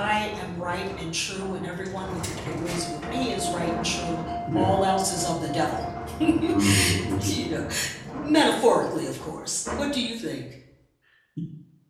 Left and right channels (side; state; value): both; identical; correlation 1.00